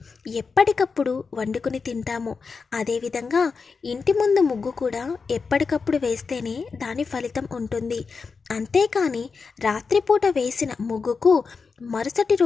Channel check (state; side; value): quieter; right; 5.0 dB